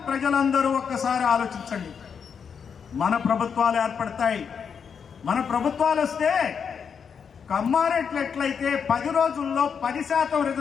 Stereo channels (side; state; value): right; quieter; 6.7 dB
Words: ప్రజలందరూ ఒక్కసారి ఆలోచించండి. మన ప్రభుత్వాలు ఏర్పడతాయి. మన ప్రభుత్వాలు వస్తే కమ్మారెడ్లు ఎట్లయితే 10 రోజుల్లో 10%